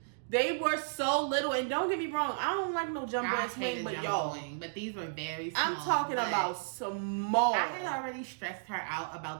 They were so little. And don't get me wrong, I don't like no jumbo ass wing, but y'all. But these were very small. I'm talking about small. I had already stressed her out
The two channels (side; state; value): left; silent; digital silence